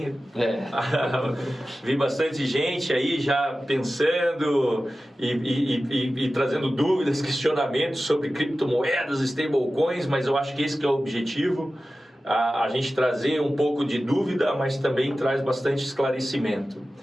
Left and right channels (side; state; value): both; normal; correlation 0.95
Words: Vi bastante gente aí já pensando e trazendo dúvidas, questionamentos sobre criptomoedas, stablecoins, mas eu acho que esse que é o objetivo, a gente trazer um pouco de dúvida, mas também traz bastante esclarecimento.